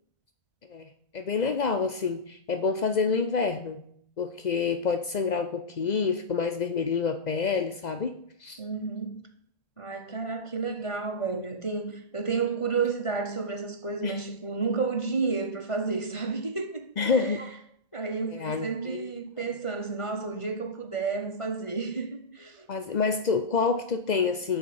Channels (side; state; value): right; late; 2.0 ms